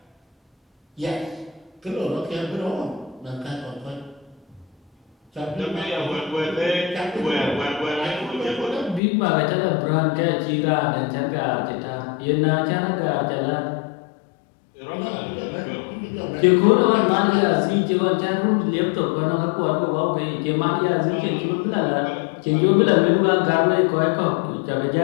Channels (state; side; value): drops out; right; at 9.0 s